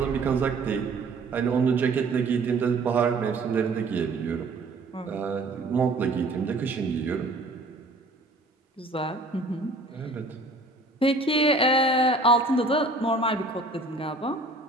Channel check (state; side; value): quieter; left; 3.1 dB